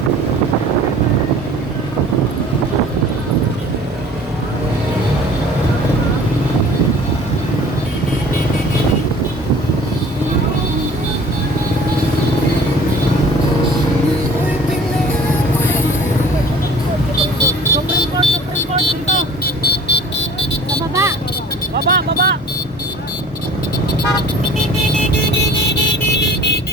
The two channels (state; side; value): normal; both; correlation 0.47